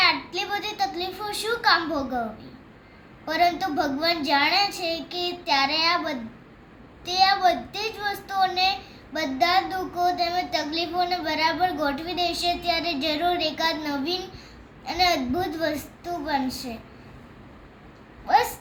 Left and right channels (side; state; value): both; identical; correlation 1.00